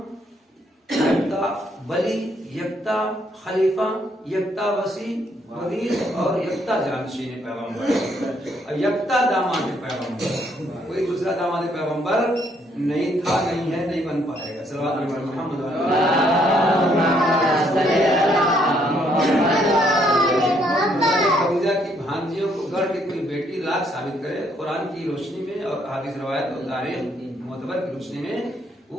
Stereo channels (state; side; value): normal; both; correlation 0.70